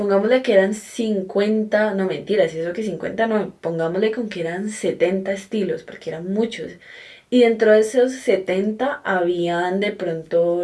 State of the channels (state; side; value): identical; both; correlation 1.00